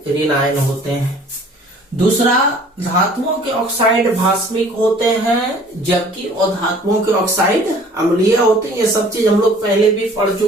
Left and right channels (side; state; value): both; normal; correlation 0.52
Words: ऋणायन होते हैं। दूसरा, धातुओं के ऑक्साइड भास्मिक होते हैं जबकि अधातुओं के ऑक्साइड अम्लीय होते हैं। ये सब चीज हम लोग पहले भी पढ़